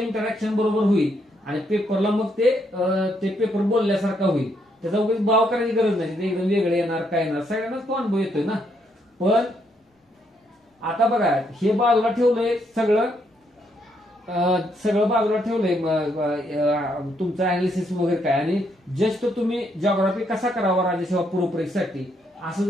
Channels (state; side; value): normal; both; correlation 0.75